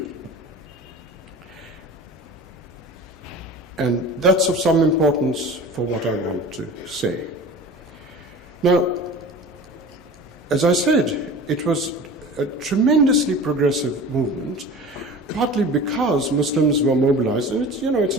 And that's of some importance for what I want to say. Now, as I said, it was a tremendously progressive movement partly because Muslims were mobilized, and it's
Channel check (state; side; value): normal; both; correlation 0.37